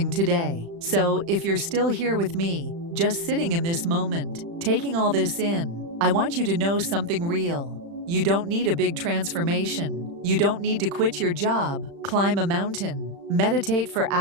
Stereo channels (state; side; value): late; left; 35 ms